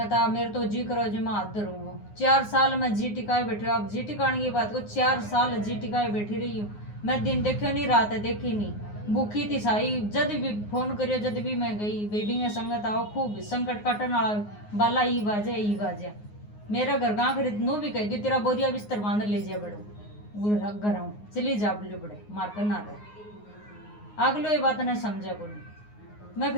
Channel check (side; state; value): right; late; 9.6 ms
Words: आ, मेरे तो जी करो जी मैं हाथ धरूंगा। 4 साल में जी टिकाए बैठी, आप जी टिकाने की बात को 4 साल जी टिकाए बैठी रही हूँ मैं। दिन देखे नहीं, रात देखी नहीं, भूखी थी साई। जद भी फोन करियो, जद भी मैं गई बेबी में संगत आओ, खूब संकट काटन वाला बाला ई बाजे मेरा घर गाँव खरीद नू भी कह दी तेरा बोरिया बिस्तर बांध ले जाए बड़ो घर आऊँ चली जा बोले बड़े मार कर ना रहे। अगलो ये बात नहीं समझा को, मैं